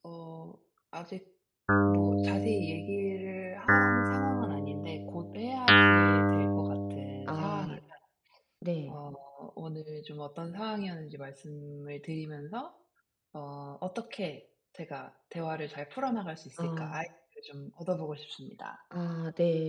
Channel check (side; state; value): both; identical; correlation 1.00